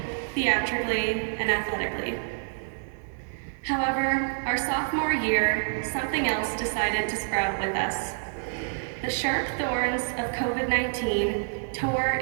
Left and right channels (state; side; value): silent; left; 59 dB below the other